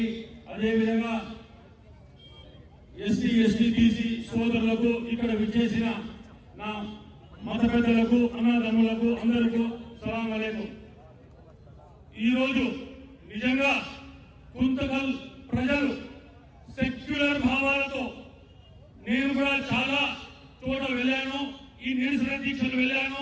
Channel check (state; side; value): identical; both; correlation 1.00